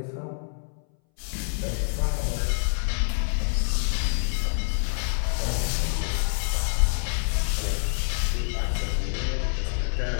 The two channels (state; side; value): silent; right; 60 dB below the other